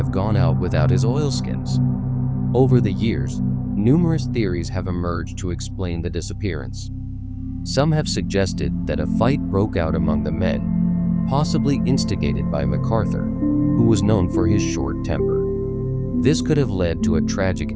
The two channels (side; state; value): both; identical; correlation 1.00